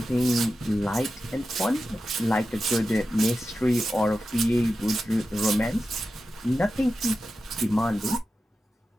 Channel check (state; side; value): normal; both; correlation 0.92